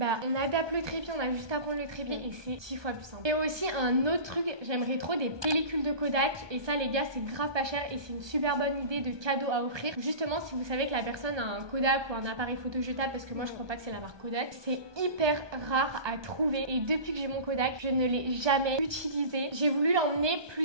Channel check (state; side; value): late; left; 1.2 ms